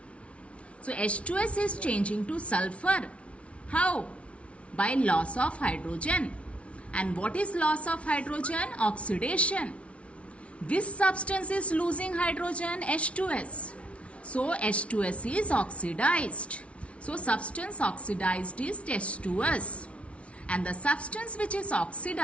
So H2S is changing to sulfur. How? By loss of hydrogen. And what is loss of hydrogen? Oxidation. Which substance is losing hydrogen? H2S. So H2S is oxidized. So substance oxidized is H2S. And the substance which is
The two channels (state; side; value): late; right; 0.062 ms